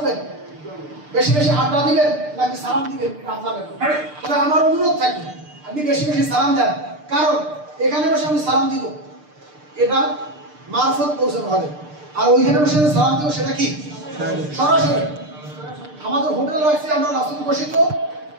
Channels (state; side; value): late; left; 6.7 ms